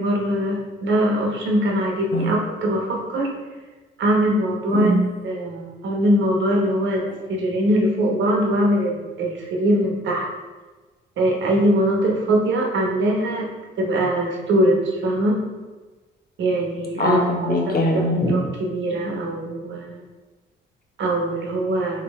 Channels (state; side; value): normal; both; correlation 0.55